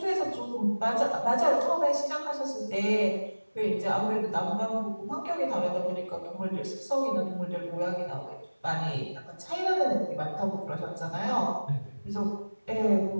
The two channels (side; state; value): both; inverted; correlation -1.00